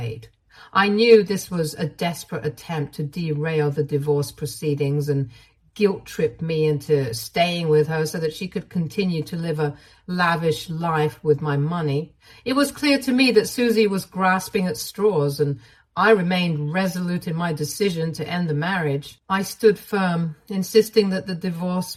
I knew this was a desperate attempt to derail the divorce proceedings and guilt-trip me into staying with her so that she could continue to live a lavish life with my money. It was clear to me that Susie was grasping at straws, and I remained resolute in my decision to end the marriage. I stood firm, insisting that the divorce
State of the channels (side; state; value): both; identical; correlation 1.00